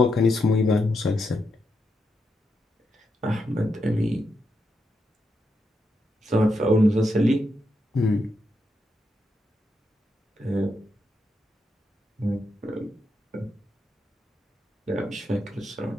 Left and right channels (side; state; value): both; normal; correlation 0.83